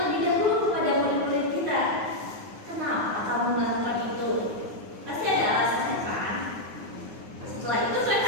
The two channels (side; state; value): left; late; 9.5 ms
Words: dahulu kepada murid-murid kita, kenapa kamu melakukan itu? Pasti ada alasannya kan? Setelah itu